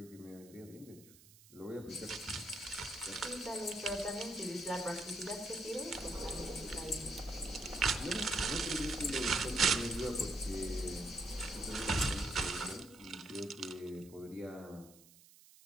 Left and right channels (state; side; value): noise; right; hiss, 23 dB below the sound